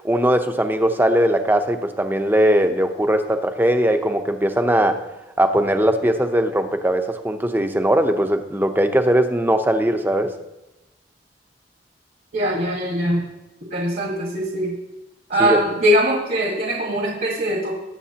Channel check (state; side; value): normal; both; correlation 0.68